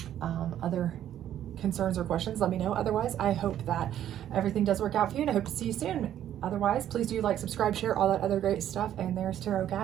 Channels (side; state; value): left; quieter; 11.1 dB